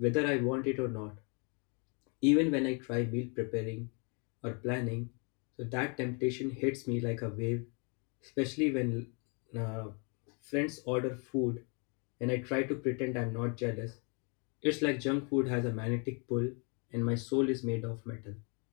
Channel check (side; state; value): right; quieter; 35.9 dB